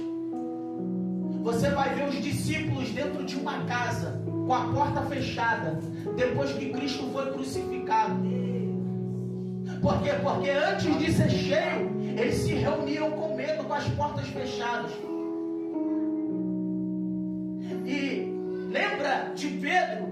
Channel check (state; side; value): identical; both; correlation 1.00